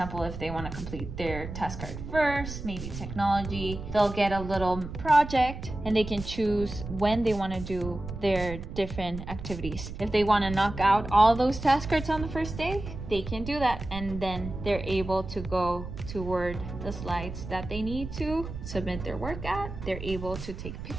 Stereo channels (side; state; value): right; noise; rumble, 9 dB below the sound